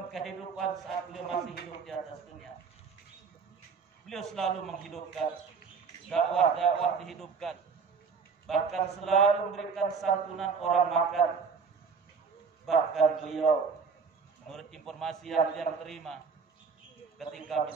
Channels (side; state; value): left; quieter; 5.5 dB